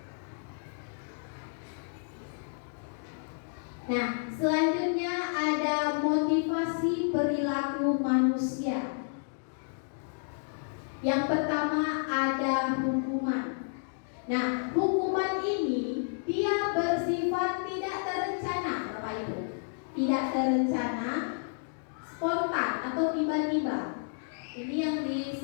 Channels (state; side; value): silent; right; digital silence